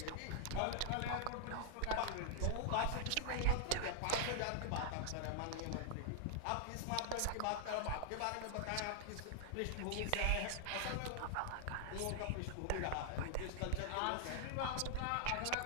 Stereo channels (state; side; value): different; both; correlation -0.01